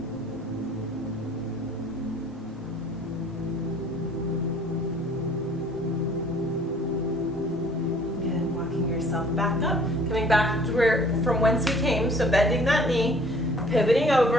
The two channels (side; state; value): both; normal; correlation 0.54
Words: Back up, coming back to from whence we came, so bending that knee, pivoting